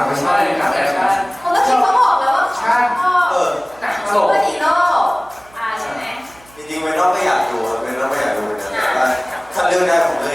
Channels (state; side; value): noise; right; hum, 26 dB below the sound